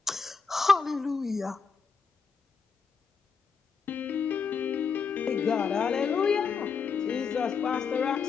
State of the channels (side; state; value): right; quieter; 5.6 dB